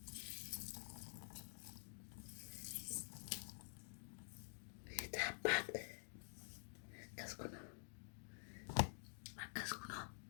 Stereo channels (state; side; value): silent; right; digital silence